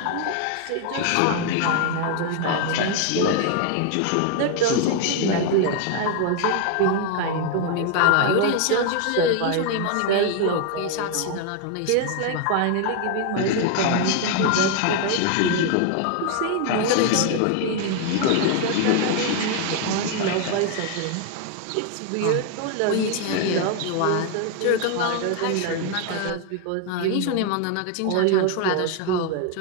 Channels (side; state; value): both; different; correlation 0.00